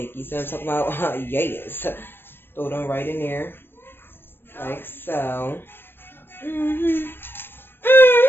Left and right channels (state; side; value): late; right; 0.10 ms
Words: You see what I'm talking about? Yes. Throw them right in there. Like so.